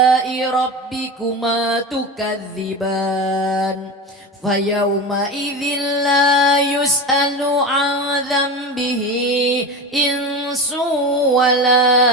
ربكما تكذبان فيومئذ لا يسأل عن ذنبه إنس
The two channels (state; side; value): normal; both; correlation 0.25